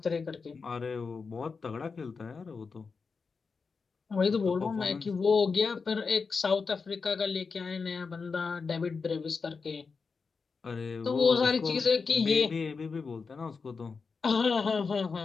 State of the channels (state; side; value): quieter; right; 4.9 dB